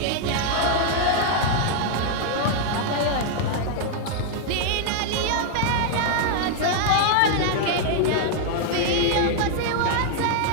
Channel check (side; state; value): both; different; correlation 0.00